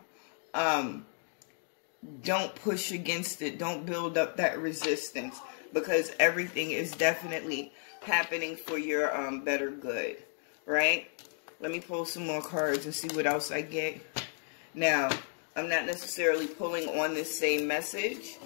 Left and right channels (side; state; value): right; silent; 56 dB below the other